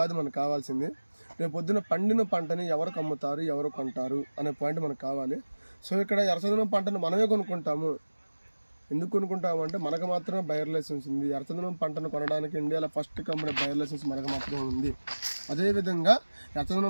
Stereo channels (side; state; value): both; inverted; correlation -1.00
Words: మనకు కావాల్సింది. రేపు పొద్దున పండిన పంటని ఎవరికి అమ్ముతారు, ఎవరు కొంటారు అనే పాయింట్ మనకు కావాలి. సో ఇక్కడ ఎర్రచందనం పంటను మనమే కొనుక్కుంటాము. ఎందుకు కొనుక్కుంటాము అంటే మనకు మాత్రమే బయర్ లైసెన్స్ ఉంది. ఎర్రచందనం పంటను కొనడానికి ఇండియాలో ఫస్ట్ కంపెనీ బయర్ లైసెన్స్ మనకు మాత్రమే ఉంది. అదేవిధంగా